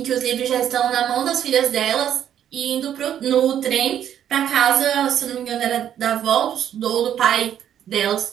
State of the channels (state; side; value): quieter; left; 10.1 dB